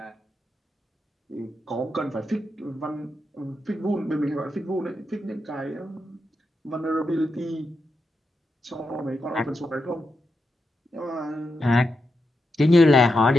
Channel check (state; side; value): normal; both; correlation 0.86